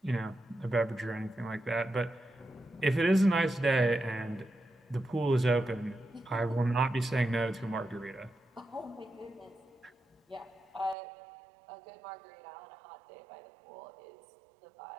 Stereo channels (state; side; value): drops out; left; at 11.0 s